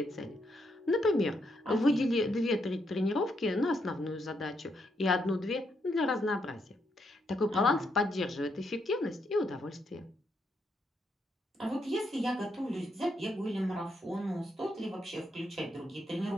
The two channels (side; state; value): both; normal; correlation 0.78